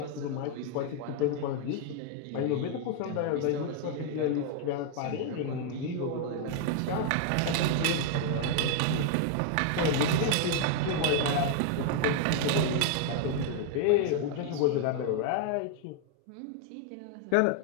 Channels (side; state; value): both; different; correlation 0.00